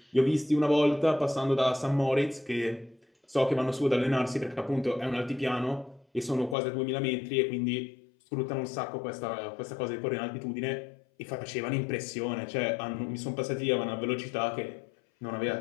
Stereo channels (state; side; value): drops out; right; at 6.6 s